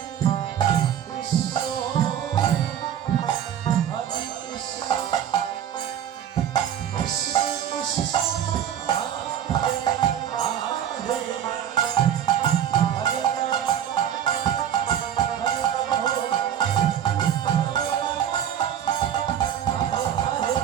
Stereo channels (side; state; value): left; quieter; 9.8 dB